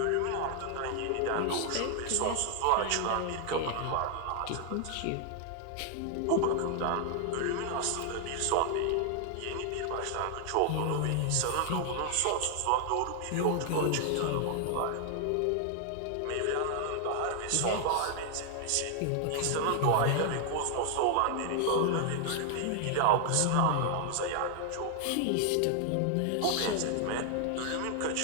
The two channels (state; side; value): different; both; correlation 0.00